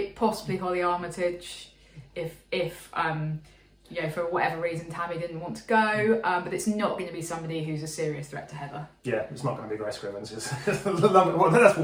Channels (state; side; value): identical; both; correlation 1.00